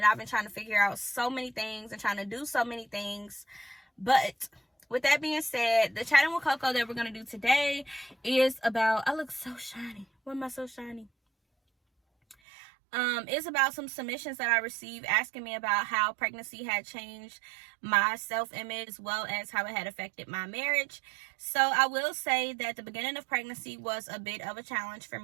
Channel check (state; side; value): drops out; left; at 12.4 s